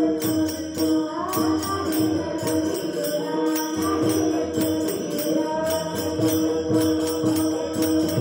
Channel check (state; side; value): identical; both; correlation 1.00